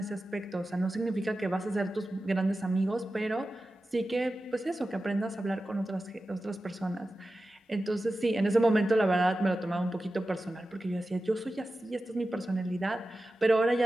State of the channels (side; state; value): both; normal; correlation 0.94